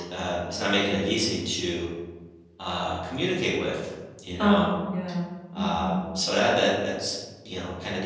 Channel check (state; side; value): identical; both; correlation 1.00